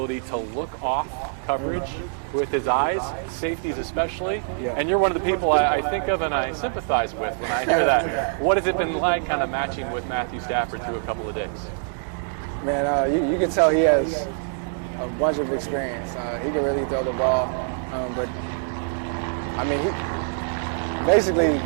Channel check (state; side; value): silent; left; digital silence